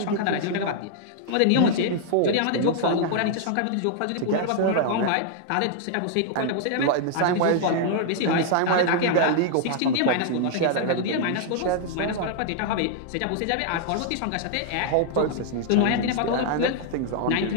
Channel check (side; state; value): both; different; correlation -0.01